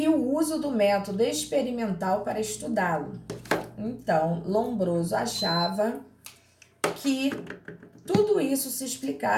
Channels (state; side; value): identical; both; correlation 1.00